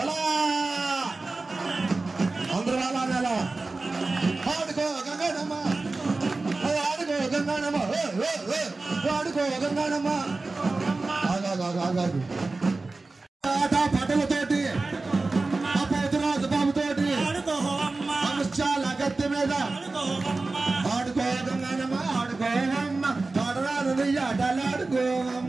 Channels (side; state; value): left; quieter; 3.5 dB